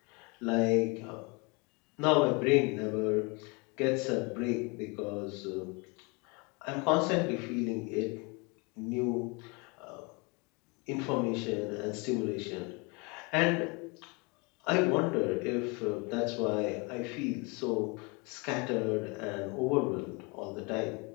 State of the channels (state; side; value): quieter; right; 29.7 dB